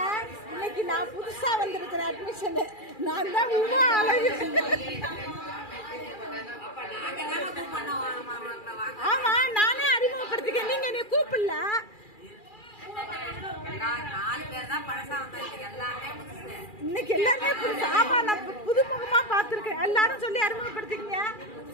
இன்னைக்கு நான் புதுசா வந்திருக்கிற அட்மிஷன். நான் தான் ஆமா, நானே அறிமுகப்படுத்திக்க. நீங்க என்னை கூப்பிடல. இன்னைக்கு எல்லாருமே புதுசு. ஆமா, நான் புதுமுகமா பாத்துருக்கேன். எல்லாரும் சொல்லி அறிமுகப்படுத்திக்கங்க.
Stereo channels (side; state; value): right; late; 2.4 ms